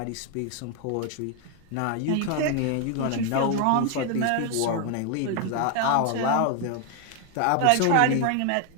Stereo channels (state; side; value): different; both; correlation 0.00